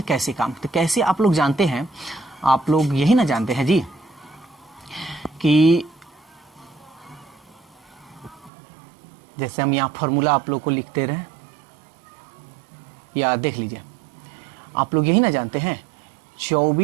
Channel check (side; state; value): left; drops out; at 8.5 s